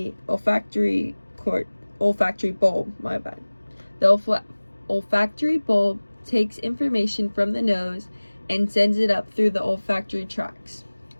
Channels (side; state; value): both; inverted; correlation -1.00